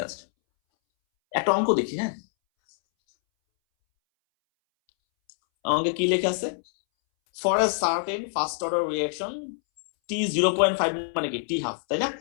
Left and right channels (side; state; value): right; silent; 61 dB below the other